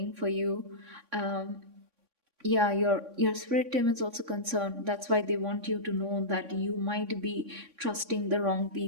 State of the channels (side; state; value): left; late; 3.6 ms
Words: for you. um, yeah, your spirit team is also concerned. That's why they want you to know that you might be trusting the wrong